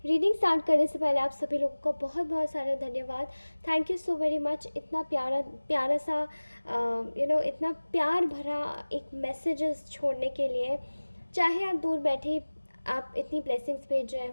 स्टार्ट करने से पहले आप सभी लोगों का बहुत बहुत सारा धन्यवाद। Thank you so very much. इतना प्यारा प्यारा सा इतना प्यार भरा एक मैसेजेस छोड़ने के लिए। चाहे आप दूर बैठे आप इतनी ब्लेसिंग्स भेज रहे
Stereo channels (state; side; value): inverted; both; correlation -1.00